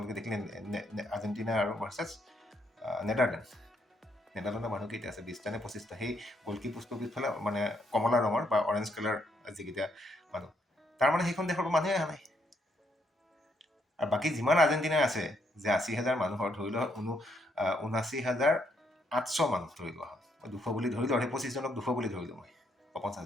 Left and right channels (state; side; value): normal; both; correlation 0.74